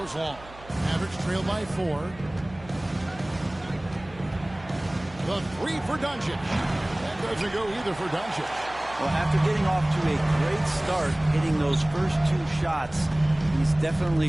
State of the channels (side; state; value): right; noise; hum, 20 dB below the sound